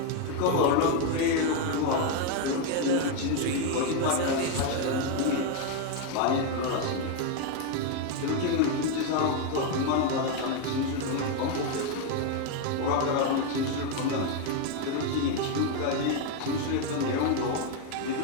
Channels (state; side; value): different; both; correlation 0.02